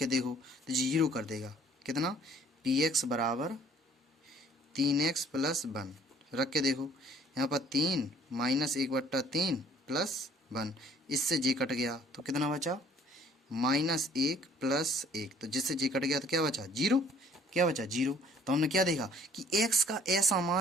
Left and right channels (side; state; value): both; normal; correlation 0.58